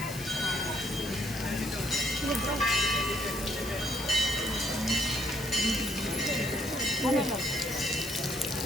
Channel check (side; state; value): left; noise; hiss, 13 dB below the sound